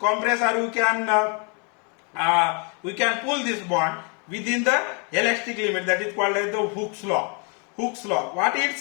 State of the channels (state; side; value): quieter; right; 36.1 dB